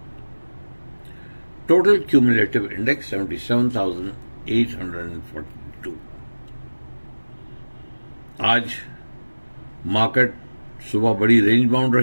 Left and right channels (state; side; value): inverted; both; correlation -1.00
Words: total cumulative index 77,842। आज मार्केट सुबह बड़ी रेंज बाउंड